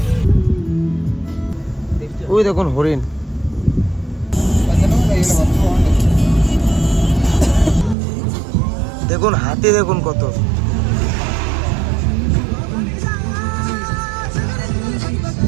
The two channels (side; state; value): left; drops out; at 8.0 s